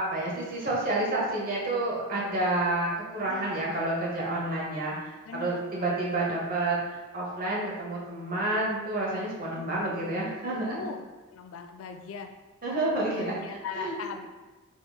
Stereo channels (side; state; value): both; normal; correlation 0.12